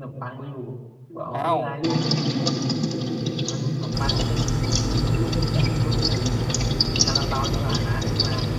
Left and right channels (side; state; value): both; identical; correlation 1.00